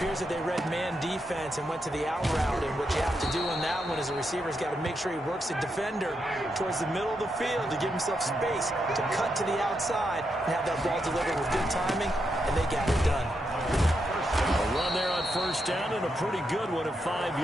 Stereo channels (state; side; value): normal; both; correlation 0.83